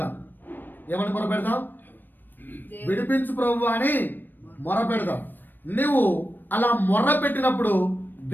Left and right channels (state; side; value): late; right; 0.092 ms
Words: ఏమని మొరపెడదాం? విడిపించు ప్రభు అని మొరపెడదాం. నువ్వు అలా మొర్ర పెట్టినప్పుడు